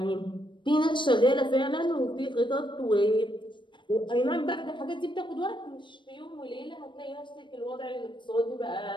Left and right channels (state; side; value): late; right; 0.23 ms